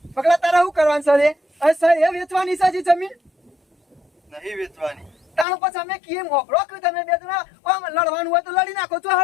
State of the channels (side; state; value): right; drops out; at 5.5 s